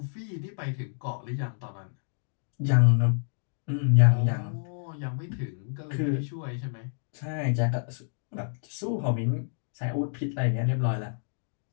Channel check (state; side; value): silent; right; digital silence